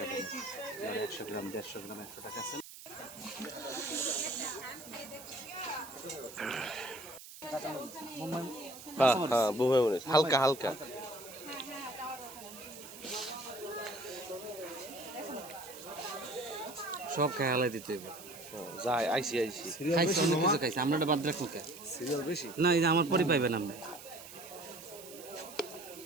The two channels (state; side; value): noise; right; hiss, 15 dB below the sound